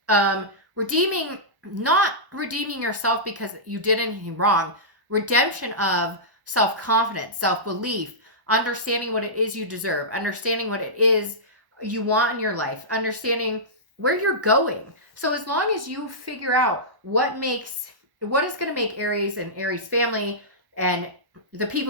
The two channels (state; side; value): late; left; 1.1 ms